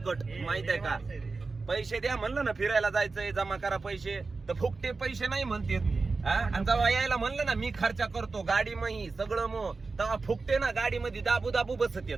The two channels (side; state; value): left; quieter; 4.0 dB